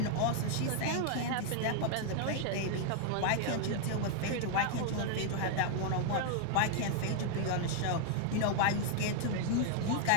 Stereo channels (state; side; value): different; both; correlation 0.00